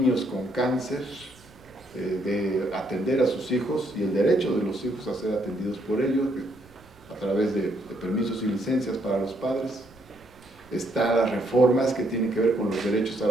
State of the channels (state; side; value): noise; right; rumble, 27 dB below the sound